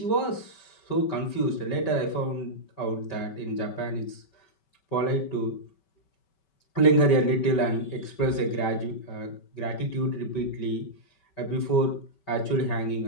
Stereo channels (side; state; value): right; late; 5.2 ms